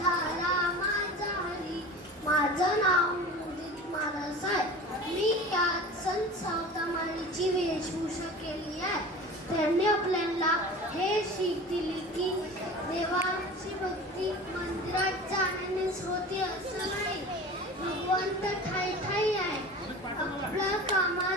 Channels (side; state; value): both; normal; correlation 0.36